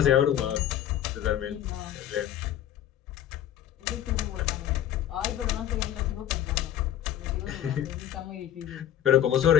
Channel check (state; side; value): quieter; right; 11.3 dB